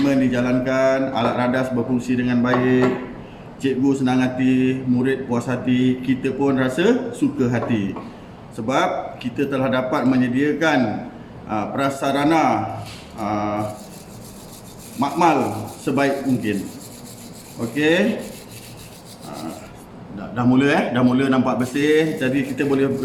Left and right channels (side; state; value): both; identical; correlation 1.00